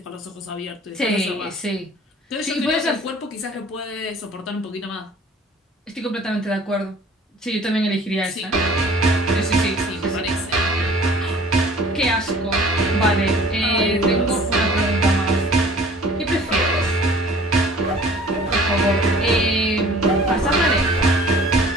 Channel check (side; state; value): both; normal; correlation 0.50